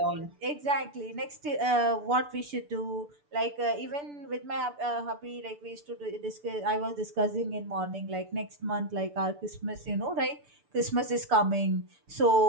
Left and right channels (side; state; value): left; late; 6.9 ms